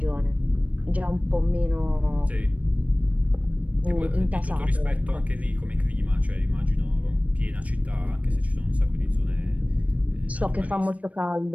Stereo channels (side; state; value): left; late; 0.068 ms